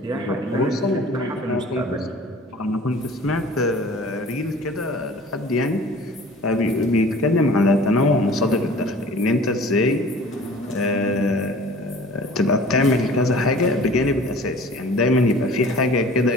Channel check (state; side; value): normal; both; correlation 0.46